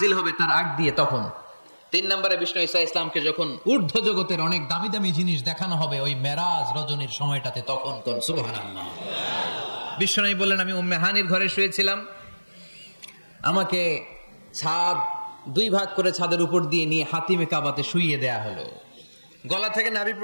হবে তার আগ দিয়ে তখন, 3 নম্বরে বিষ্ণু ঈসা ইসলামকে যখন ঊর্ধ্ব জগতের অনেক দামি দামি জিনিস দেখানো হবে ওই মেরাজ রজনীর সময়টাতে, তখন কোন সুবহানাল্লাহ। বিশ্বনবী বললেন, আমি উম্মে হানির ঘরে শুয়েছিলাম, আমাকে ছাদ 2 ভাগ করে ছাদের উপর দিয়ে নিয়ে হাতিমে কাবাতে শুইয়ে দেয়া হলো, গলা থেকে নাভি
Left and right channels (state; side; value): inverted; both; correlation -1.00